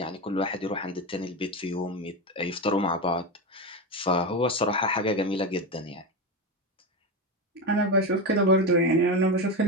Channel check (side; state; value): both; normal; correlation 0.17